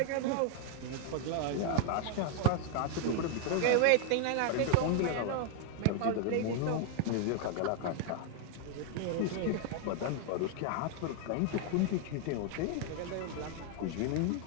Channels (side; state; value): both; different; correlation 0.00